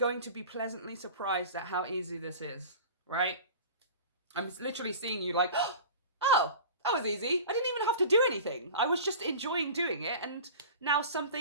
to be pleasantly surprised at how easy this is, right? I'm literally seeing you like, oh, that was easy. I didn't even have to do anything. I was just enjoying doing it. And now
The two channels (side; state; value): both; inverted; correlation -0.37